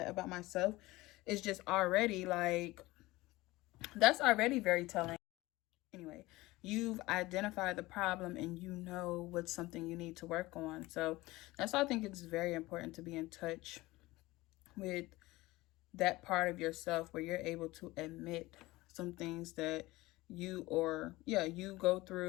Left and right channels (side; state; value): right; quieter; 19.6 dB